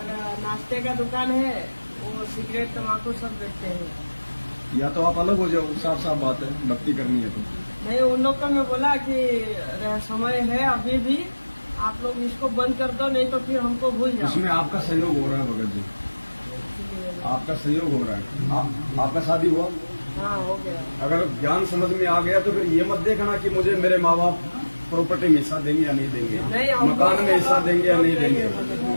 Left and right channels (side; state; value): both; inverted; correlation -1.00